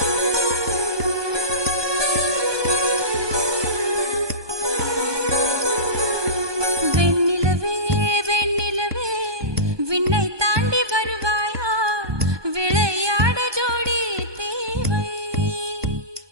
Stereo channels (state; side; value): late; left; 1.2 ms